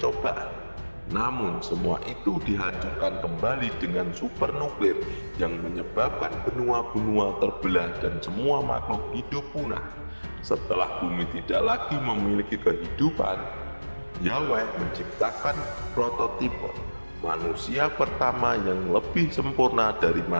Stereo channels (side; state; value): both; inverted; correlation -1.00